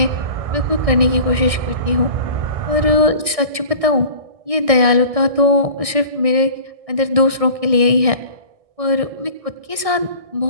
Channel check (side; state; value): left; late; 1.6 ms